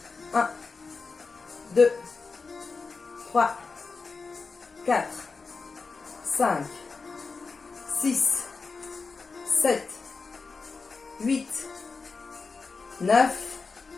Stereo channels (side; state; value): right; quieter; 4.4 dB